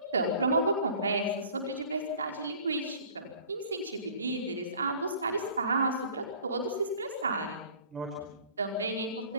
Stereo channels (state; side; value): inverted; both; correlation -0.48